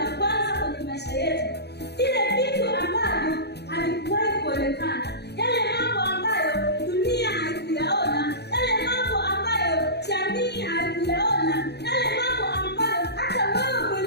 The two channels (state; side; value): late; right; 0.48 ms